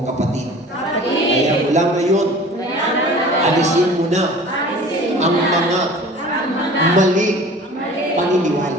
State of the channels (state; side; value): normal; both; correlation 0.43